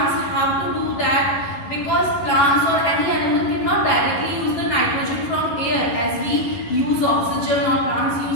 have to do that, because plants or any animal cannot directly use the nitrogen from air as we use oxygen, or plants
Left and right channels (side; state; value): right; late; 11 ms